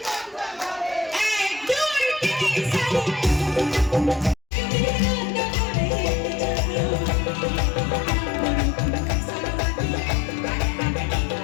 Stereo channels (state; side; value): drops out; right; at 4.4 s